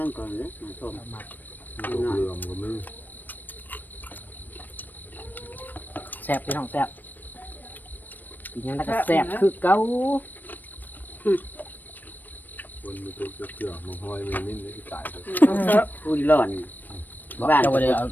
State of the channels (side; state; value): right; late; 0.090 ms